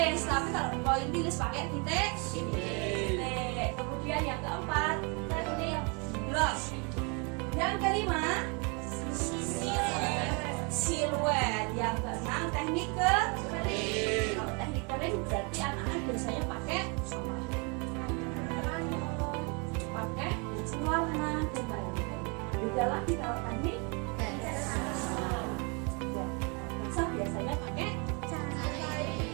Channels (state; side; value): quieter; left; 32.8 dB